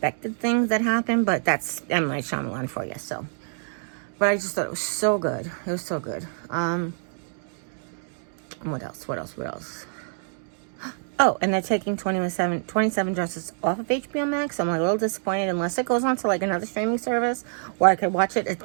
things that happen, but that's M. Night Shyamalan for you, so. But I just thought it was so good. It was so good. What else? Oh, and they're taking 27 Dresses off of HBO Max. I'm like a little disappointed unless it goes on to like another streaming service where I could watch it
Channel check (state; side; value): silent; left; digital silence